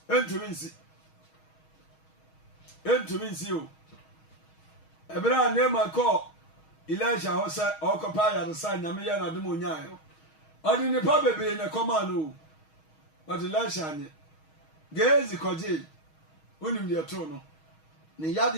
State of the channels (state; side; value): late; right; 6.3 ms